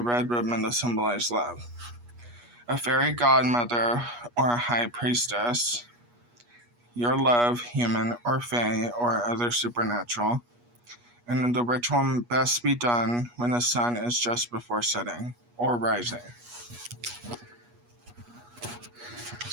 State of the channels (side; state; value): left; late; 8.3 ms